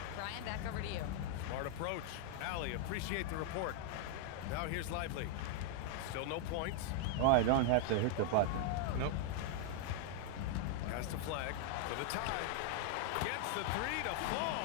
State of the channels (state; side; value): different; both; correlation 0.00